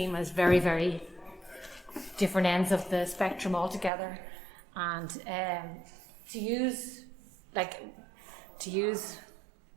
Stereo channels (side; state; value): left; drops out; at 3.9 s